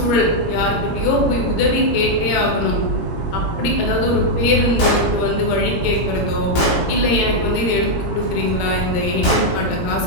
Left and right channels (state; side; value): late; right; 18 ms